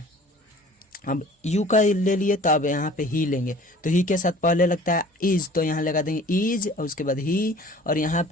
अब यू का ले लिए तो अब यहाँ पे ही लेंगे, तो ही के साथ पहले लगता है इज, तो यहाँ लगा देंगे इज और उसके बाद ही, और यहाँ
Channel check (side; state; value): both; normal; correlation 0.48